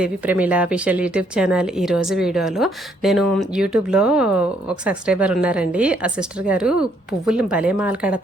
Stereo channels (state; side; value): normal; both; correlation 0.70